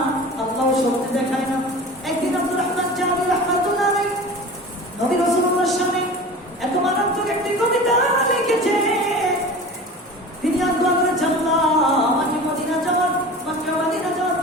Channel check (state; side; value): normal; both; correlation 0.36